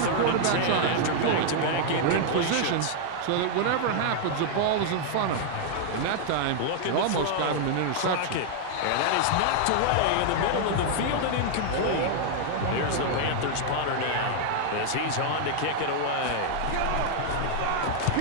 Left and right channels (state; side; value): different; both; correlation 0.00